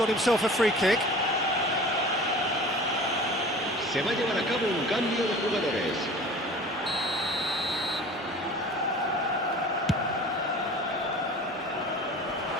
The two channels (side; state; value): both; normal; correlation 0.41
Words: himself a free kick. Se va a llevar a cabo un cambio de jugadores.